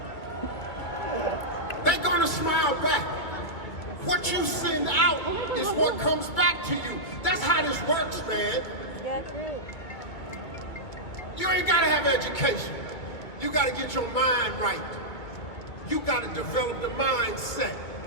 They're gonna smile back. What you send out is what comes back to you. That's how this works, man. You ain't gotta have education. You gotta get your mind right. You gotta develop the mindset.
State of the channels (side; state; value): right; late; 2.5 ms